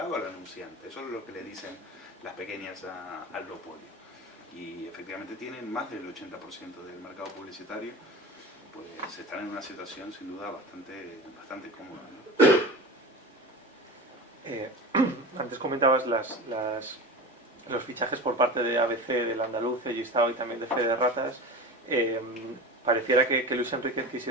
al anunciante. Eso es lo que le dicen las pequeñas al duopolio. Y efectivamente tienen más del 80% del mercado publicitario, pues están en una situación sin duda bastante cómoda, ¿no? Antes comentabas los fichajes por parte de ABC, del Andaluz, de Gistau y también de Fede Ratas. Pareciera que Luis Enrique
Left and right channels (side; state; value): both; normal; correlation 0.30